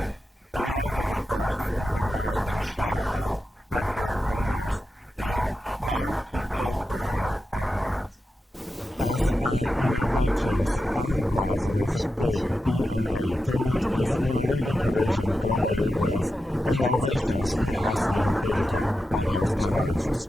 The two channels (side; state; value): both; normal; correlation 0.90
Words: it ranked first in the market share of vacuum cleaners in multiple price segments. As an innovative enterprise with geek DNA, Dreame is in a leading position globally with innovations in high-speed digital motors technologies,